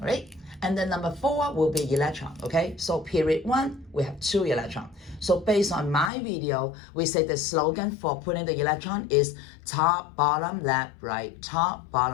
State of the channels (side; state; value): right; drops out; at 6.1 s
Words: right, and then number 4 will be electron, okay? So period 1, we have 2 electrons. So based on my video, we say the slogan for putting the electron is top, bottom, left, right, top,